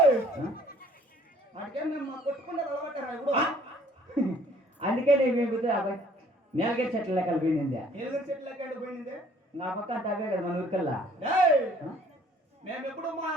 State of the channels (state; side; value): normal; both; correlation 0.57